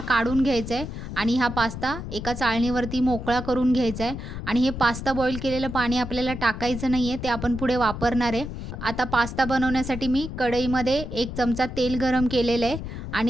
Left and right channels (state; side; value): noise; left; rumble, 8 dB below the sound